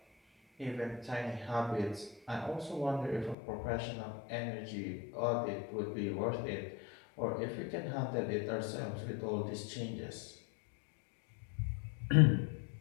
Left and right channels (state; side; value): drops out; right; at 3.4 s